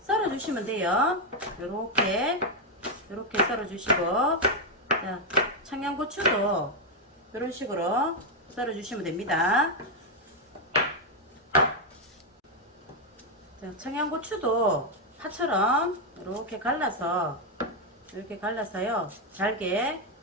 썰어 주시면 돼요. 요렇게 썰어 주시고, 자, 청양고추도 이런 식으로 썰어 주시면 됩니다. 자, 청양고추도 파처럼 이렇게 갈라서요 잘게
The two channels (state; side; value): normal; both; correlation 0.02